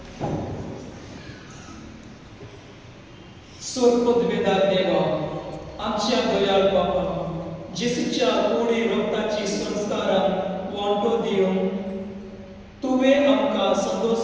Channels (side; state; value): both; identical; correlation 1.00